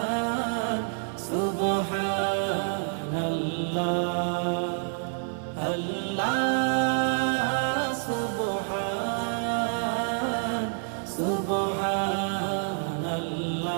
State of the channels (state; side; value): silent; left; digital silence